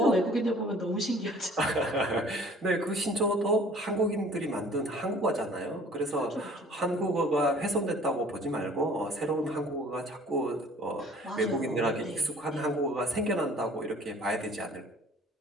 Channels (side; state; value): both; normal; correlation 0.51